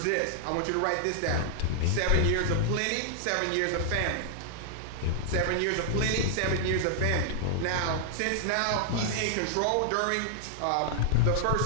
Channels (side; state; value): both; different; correlation -0.01